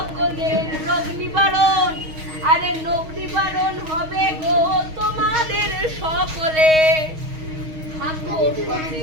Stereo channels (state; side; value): late; left; 6.3 ms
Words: রোগ নিবারণ, আরে রোগ নিবারণ হবে গো তোমাদের সকলে। থাকো